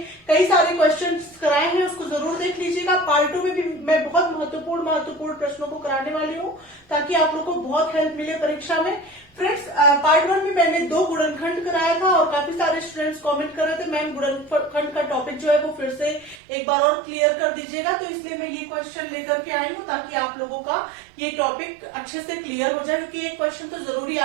कई सारे क्वेश्चंस कराए हैं, उसको जरूर देख लीजिएगा। पार्ट 2 में भी मैं बहुत महत्वपूर्ण प्रश्नों को कराने वाली हूँ ताकि आप लोग को बहुत हेल्प मिले परीक्षा में। फ्रेंड्स, पार्ट 1 में मैंने 2 गुणनखंड कराया था और काफी सारे स्टूडेंट्स कमेंट कर रहे थे मैम गुणनखंड का टॉपिक जो है वो फिर से एक बार और क्लियर कर दीजिएगा। तो इसलिए मैं ये क्वेश्चन लेकर के आई हूँ ताकि आप लोगों का ये टॉपिक अच्छे से क्लियर हो जाए, क्योंकि ये क्वेश्चन तो जरूरी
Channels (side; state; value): left; drops out; at 16.4 s